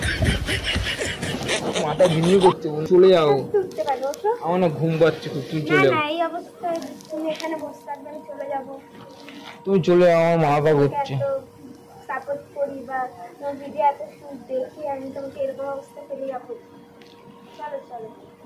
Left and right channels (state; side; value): identical; both; correlation 1.00